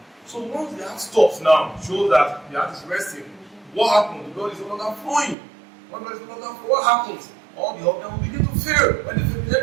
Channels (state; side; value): drops out; left; at 5.4 s